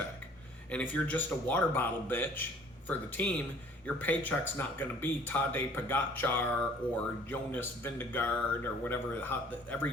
And if you're just a water bottle bitch for the team, your paycheck's not going to be Tadej Pogacar or Jonas Vingegaard or whatever.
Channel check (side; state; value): both; normal; correlation 0.54